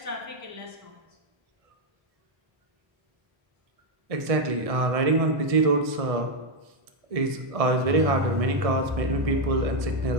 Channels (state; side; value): late; left; 1.6 ms